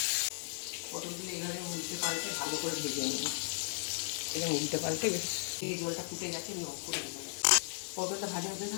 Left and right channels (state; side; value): silent; right; 54 dB below the other